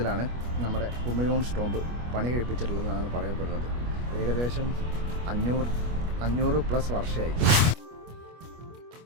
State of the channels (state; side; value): late; left; 25 ms